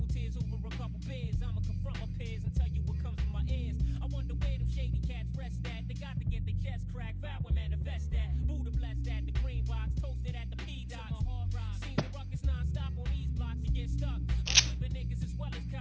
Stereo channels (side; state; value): both; identical; correlation 1.00